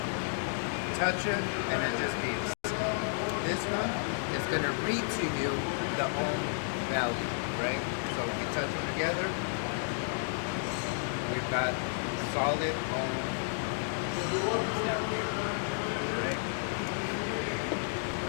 Touch it and it just beeps. This one is going to read to you the ohm value, right? So if we touch them together, we've got solid ohms down here, right?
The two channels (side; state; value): right; silent; digital silence